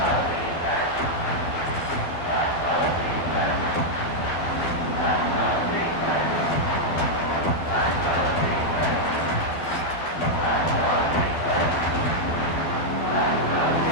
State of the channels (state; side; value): late; right; 12 ms